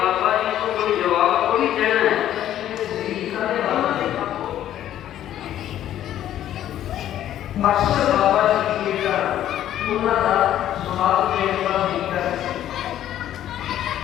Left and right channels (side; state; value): right; quieter; 11.8 dB